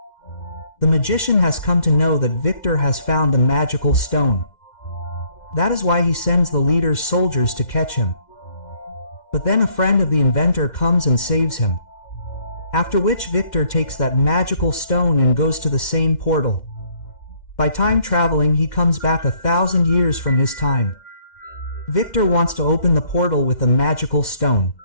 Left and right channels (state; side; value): late; right; 2.1 ms